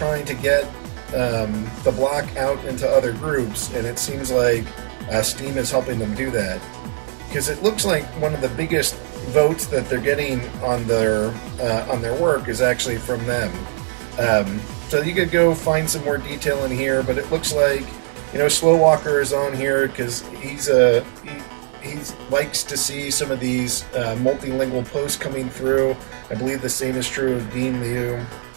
to get the block out into other groups, and it seems like Steem is helping them do that, because it looks like one of the biggest votes that they're getting on their work is actually from them. So you could go find some more detail in here, but it looks like, Slow Walker is on here because he likes to see some of these multilingual posts coming through. I believe the same is true of Dean Liu.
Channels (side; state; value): left; silent; 62 dB below the other